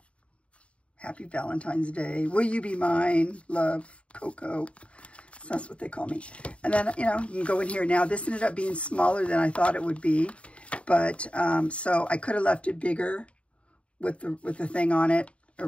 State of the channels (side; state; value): right; late; 0.061 ms